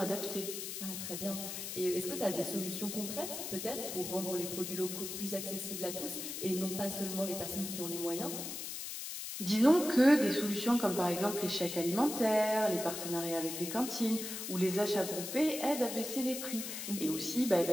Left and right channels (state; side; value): noise; left; hiss, 6 dB below the sound